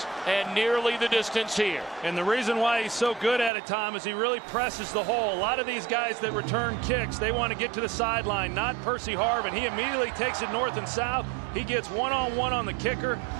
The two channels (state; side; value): drops out; left; at 3.5 s